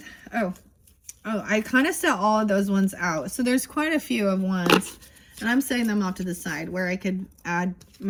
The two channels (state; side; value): identical; both; correlation 1.00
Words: oh, I kind of set all of those ones out. So there's quite a few of ones. And I'm setting them off to the side where I could add